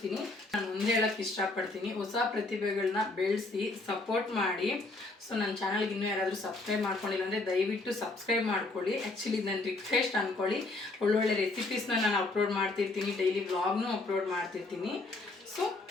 ನಾನು ಮುಂದೆ ಹೇಳೋಕ್ಕೆ ಇಷ್ಟಪಡ್ತೀನಿ, ಹೊಸ ಪ್ರತಿಭೆಗಳನ್ನ ಬೆಳೆಸಿ ಸಪೋರ್ಟ್ ಮಾಡಿ. ಸೊ ನನ್ನ ಚಾನಲ್ಗೆ ಇನ್ನೂ ಯಾರಾದರೂ ಸಬ್ಸ್ಕ್ರೈಬ್ ಮಾಡ್ಕೊಂಡಿಲ್ಲ ಅಂದರೆ ದಯವಿಟ್ಟು ಸಬ್ಸ್ಕ್ರೈಬ್ ಮಾಡ್ಕೊಳ್ಳಿ. ಆ್ಯಕ್ಚುಲಿ ನನ್ನ ರಿಕ್ವೆಸ್ಟ್ ಅಂದ್ಕೊಳ್ಳಿ. ಒಳ್ಳೊಳ್ಳೆ ರೆಸಿಪೀಸ್ನ ನಾನು ಅಪ್ಲೋಡ್ ಮಾಡ್ತಿರ್ತೀನಿ, ಡೈಲಿ ವ್ಲಾಗ್ನೂ ಅಪ್ಲೋಡ್ ಮಾಡ್ತಿರ್ತೀನಿ. ಸೊ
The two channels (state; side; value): quieter; right; 3.1 dB